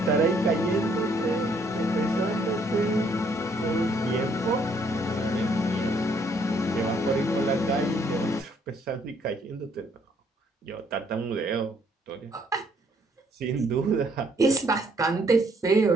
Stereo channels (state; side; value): normal; both; correlation 0.67